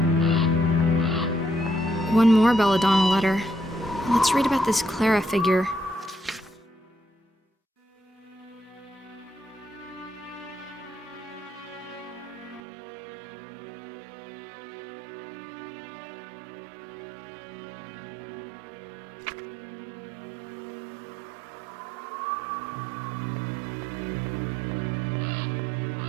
One more Belladonna letter. Let's read about this Clara figure.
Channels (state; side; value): drops out; left; at 12.6 s